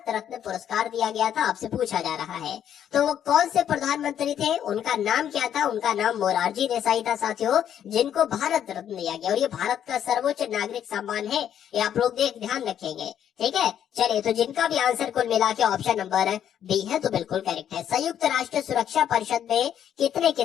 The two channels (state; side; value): quieter; right; 9.8 dB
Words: रत्न पुरस्कार दिया गया था? आपसे पूछा जा रहा है। तो वो कौन से प्रधानमंत्री थे? उनका नाम क्या था? उनका नाम मोरारजी देसाई था साथियों, जिनको भारत रत्न दिया गया। और ये भारत का सर्वोच्च नागरिक सम्मान है, ये आप लोग ध्यान रखेंगे। ठीक है, चलिए तो जिनका भी आंसर कुल मिला के ऑप्शन नंबर बी है तो बिल्कुल करेक्ट है। संयुक्त राष्ट्र सुरक्षा परिषद में कितने